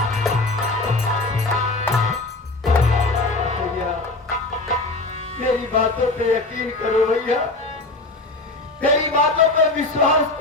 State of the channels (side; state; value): right; quieter; 3.0 dB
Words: मेरी बातों पे यकीन करो भैया, मेरी बातों पे विश्वास